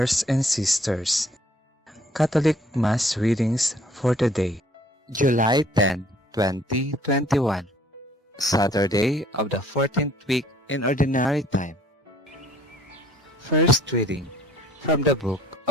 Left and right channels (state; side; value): normal; both; correlation 0.58